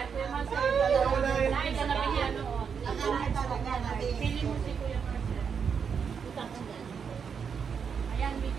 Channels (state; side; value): quieter; left; 6.6 dB